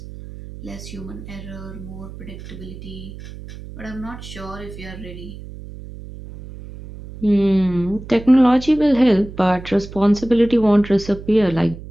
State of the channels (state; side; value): noise; right; hum, 14 dB below the sound